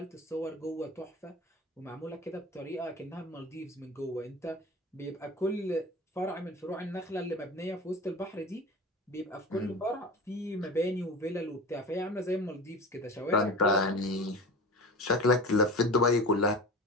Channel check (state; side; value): normal; both; correlation 0.34